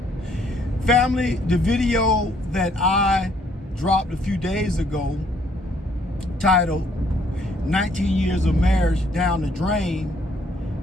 Family, the video that I dropped a few days ago, titled 19 years of marriage down the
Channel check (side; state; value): both; normal; correlation 0.66